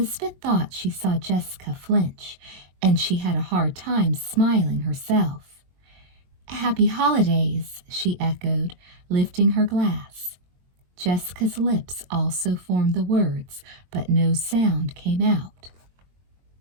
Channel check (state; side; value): late; left; 22 ms